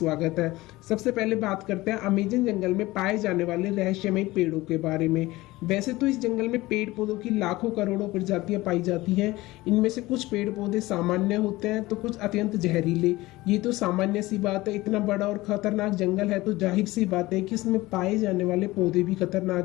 है। सबसे पहले बात करते हैं अमेज़न जंगल में पाए जाने वाले रहस्यमयी पेड़ों के बारे में। वैसे तो इस जंगल में पेड़ पौधों की लाखों करोड़ों प्रजातियां पाई जाती हैं। इनमें से कुछ पेड़ पौधे सामान्य होते हैं तो कुछ अत्यंत जहरीले। ये तो सामान्य सी बात है, इतना बड़ा और खतरनाक जंगल है तो जाहिर सी बात है कि इसमें पाए जाने वाले पौधे भी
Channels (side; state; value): right; quieter; 19.2 dB